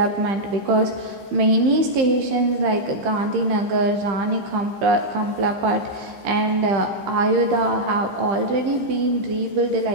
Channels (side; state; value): left; late; 15 ms